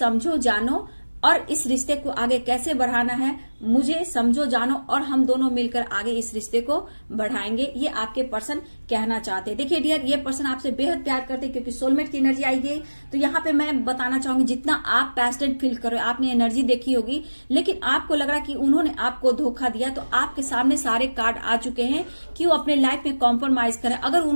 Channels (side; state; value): both; inverted; correlation -1.00